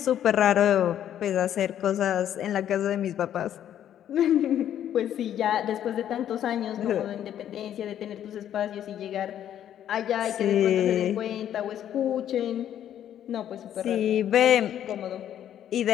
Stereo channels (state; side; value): quieter; right; 10.5 dB